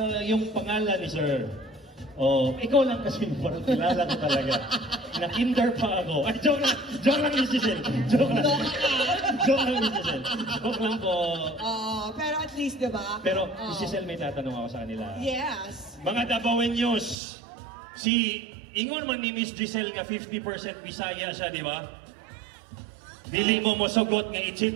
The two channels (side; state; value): left; drops out; at 17.2 s